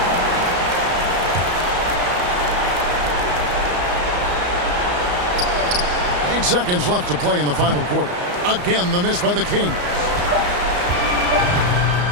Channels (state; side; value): late; left; 34 ms